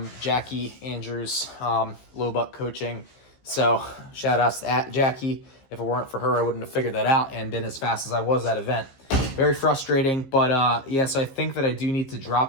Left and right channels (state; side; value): late; right; 15 ms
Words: Jackie Andrews, Low Buck Coaching. So shout outs to Jackie. If it weren't for her, I wouldn't have figured that out and been as fast as I was that event. Very frustrating, but yeah, so I think that I do need to